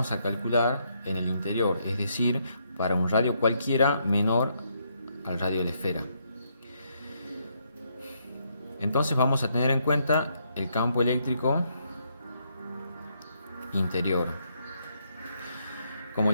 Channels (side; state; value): both; inverted; correlation -0.75